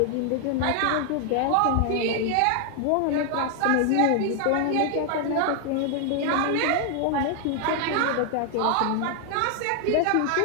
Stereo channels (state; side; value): different; both; correlation 0.00